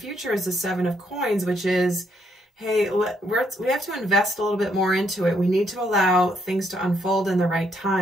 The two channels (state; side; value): normal; both; correlation 0.73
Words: is the Seven of Coins, which is, hey, we have to invest a little bit more into it. We need to allow things to unfold in the right